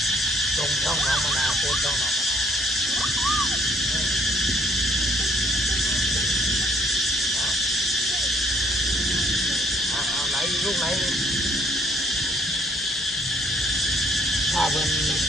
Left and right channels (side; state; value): both; normal; correlation 0.63